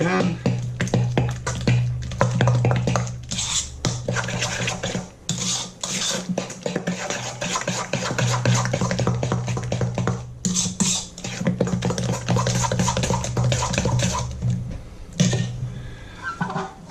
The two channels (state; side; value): identical; both; correlation 1.00